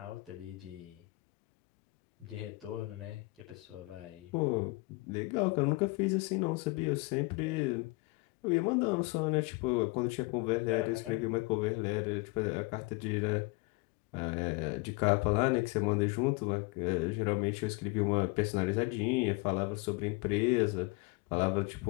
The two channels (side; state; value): right; quieter; 25.4 dB